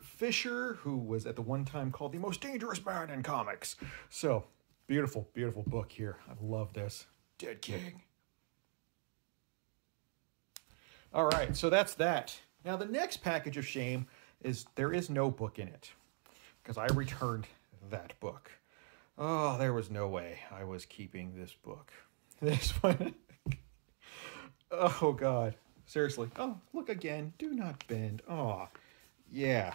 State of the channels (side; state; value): left; silent; 50 dB below the other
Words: Fisher, who was at the one time called the most dangerous man in comics. So, beautiful, beautiful book here. I love this. Dead King. All right, so that's that. Now, the next package of shame is there is no book in it because I returned that book. Oh, there was no way I was keeping this book. This one. Oh, God. Seriously. Oh, look again. Do Not Bend. Oh,